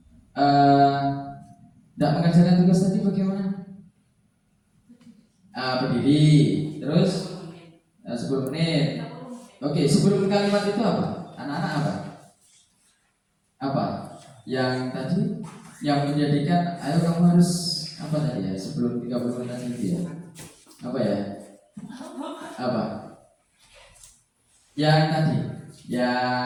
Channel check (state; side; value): identical; both; correlation 1.00